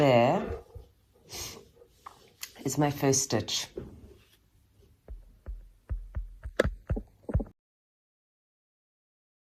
is my first stitch.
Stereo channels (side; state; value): both; identical; correlation 1.00